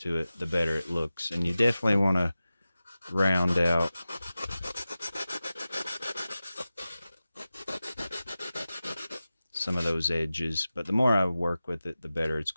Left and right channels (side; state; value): both; inverted; correlation -0.95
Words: it, the better it looks. And you definitely want to round out some of those edges, but the more I work with it, the better it's